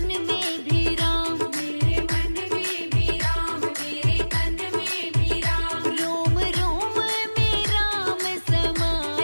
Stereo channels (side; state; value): both; inverted; correlation -1.00